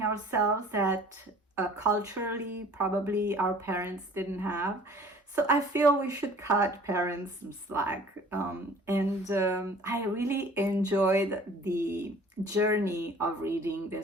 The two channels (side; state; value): both; normal; correlation 0.50